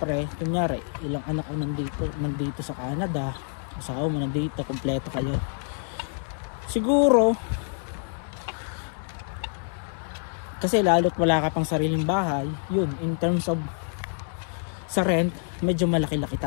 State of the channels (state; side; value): silent; right; 60 dB below the other